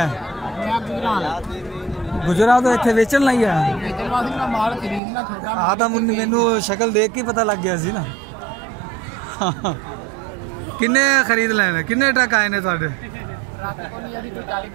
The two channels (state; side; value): drops out; left; at 5.0 s